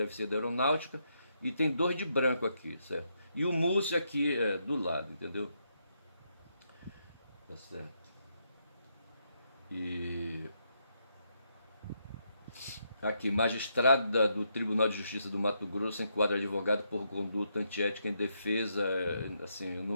ser da Aeronáutica, e tem 2 de branco aqui, certo? E o Múcio aqui do lado, entendeu? Tá certo. E aqui, magistrada do Tribunal de Justiça do Mato Grosso enquadra advogado por conduta antiética em defesa. Assim, eu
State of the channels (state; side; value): inverted; both; correlation -0.78